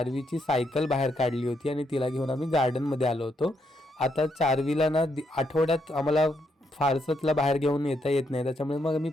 सायकल बाहेर काढली होती आणि तिला घेऊन आम्ही गार्डनमध्ये आलो होतो. आता चार्वीला ना आठवड्यात आम्हाला फारसं तिला बाहेर घेऊन येता येत नाही. त्याच्यामुळे मग मी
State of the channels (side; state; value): both; normal; correlation 0.77